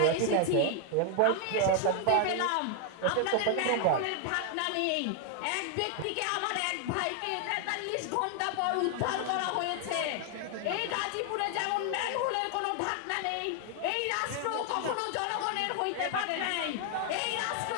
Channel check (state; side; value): different; both; correlation 0.00